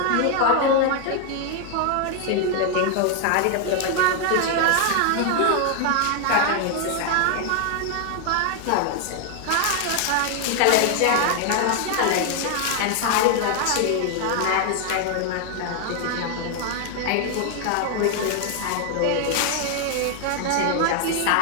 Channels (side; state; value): both; different; correlation 0.00